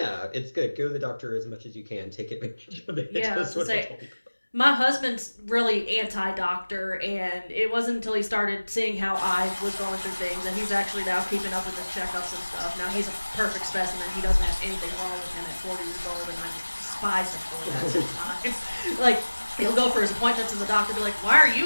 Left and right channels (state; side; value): inverted; both; correlation -1.00